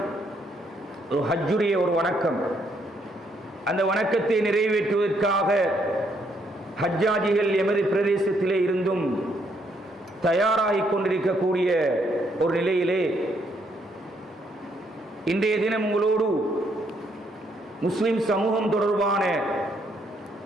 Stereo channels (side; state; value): both; normal; correlation 0.72